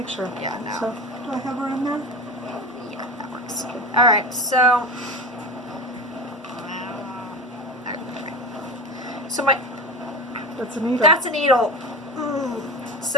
sure. yeah, no. So, do I have her in there? Yeah, that works. All right, so. So my That's a needle. that's a needle.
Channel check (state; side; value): normal; both; correlation 0.27